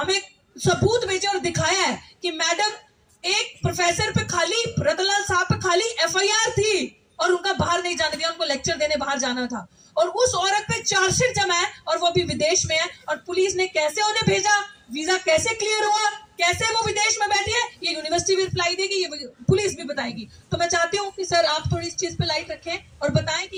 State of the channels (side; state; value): both; identical; correlation 1.00